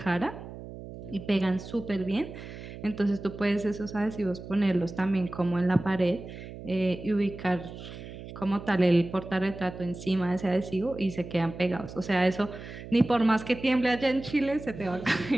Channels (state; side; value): noise; right; hum, 12 dB below the sound